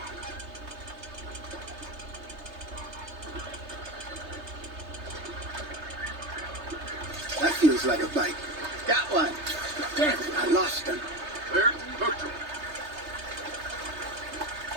That feels like a bite. Got one. Damn it, I lost him. There, hooked him.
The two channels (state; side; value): late; left; 3.3 ms